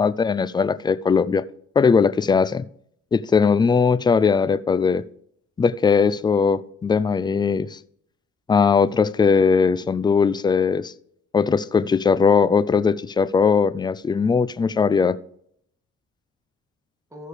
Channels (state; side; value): quieter; right; 5.3 dB